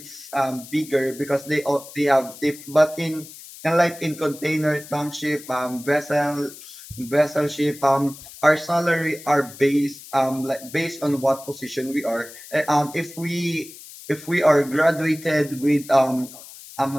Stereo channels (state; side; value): noise; left; hiss, 17 dB below the sound